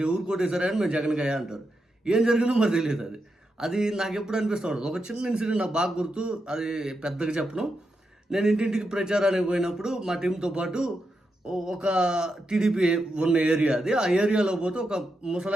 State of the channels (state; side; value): normal; both; correlation 0.86